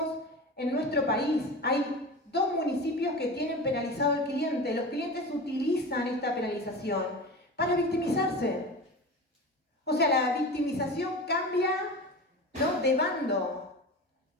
en nuestro país. Hay 2 municipios que tienen penalizado al cliente. Los clientes utilizan esta penalización para victimizarse. O sea, la victimización cambia, ¿no?, de bando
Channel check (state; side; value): normal; both; correlation 0.30